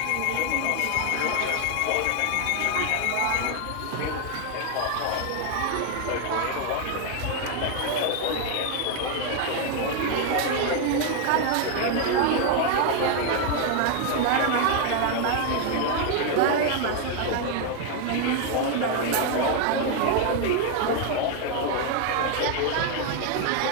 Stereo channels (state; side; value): different; both; correlation 0.01